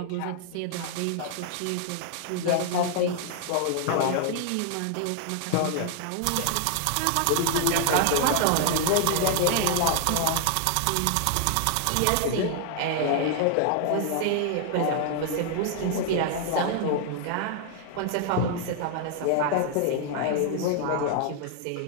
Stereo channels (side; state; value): both; different; correlation 0.00